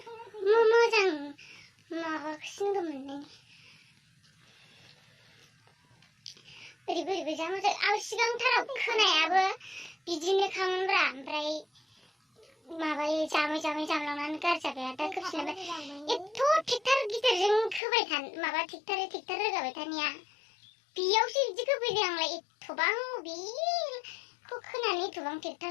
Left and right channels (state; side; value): drops out; right; at 17.8 s